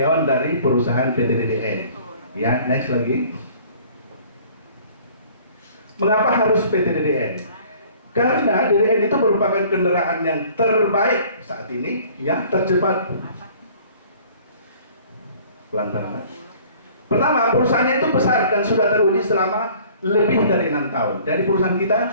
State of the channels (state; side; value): inverted; both; correlation -0.52